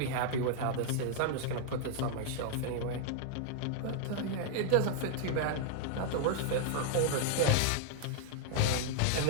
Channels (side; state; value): both; different; correlation 0.00